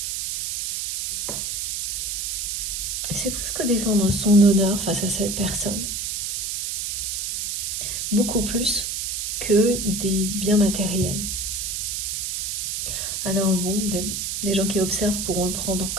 c'est presque défendre son honneur face à cette personne. Beaucoup plus que des biens matériels. Alors bon, des gens qui observent pourront le prendre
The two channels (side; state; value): right; noise; hiss, 2 dB below the sound